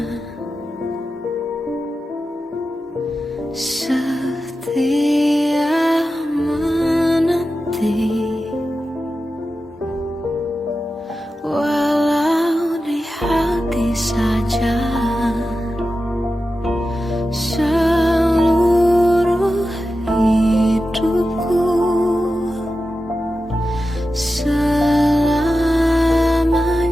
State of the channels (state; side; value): normal; both; correlation 0.92